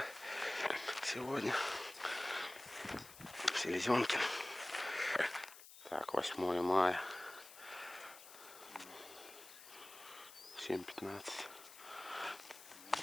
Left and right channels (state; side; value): noise; left; hiss, 17 dB below the sound